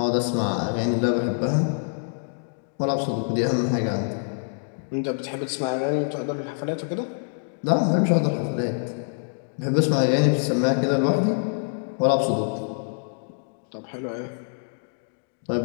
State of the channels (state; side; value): silent; right; digital silence